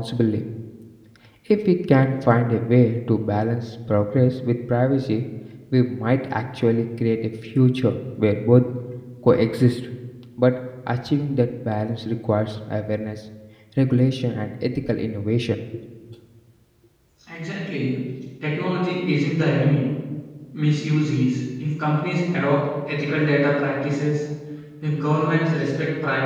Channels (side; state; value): both; identical; correlation 1.00